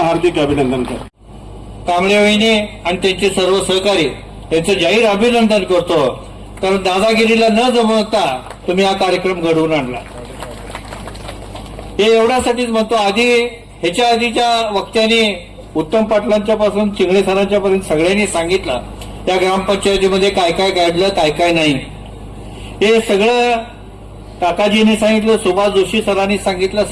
अभिनंदन करतो. कांबळे वहिनी आणि त्यांचे सर्व सहकारी यांचं जाहीर अभिनंदन करतो. कारण दादागिरीला न जमवता तुम्ही हा कार्यक्रम घडवून आणला. हे एवढ्यासाठीच म्हणतो. आधी ह्याच्या आधीच्या वक्त्यांनी उत्तम पाटलांच्या पासून चिंगळे सरांच्या पर्यंत सगळ्यांनी सांगितलं या ग्रामपंचायतीमध्ये काय काय घडलं, काय काय नाही. हे सगळं काकाजीने सांगितलं, सुभाष जोशी सरांनी सांगितलं,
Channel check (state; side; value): identical; both; correlation 1.00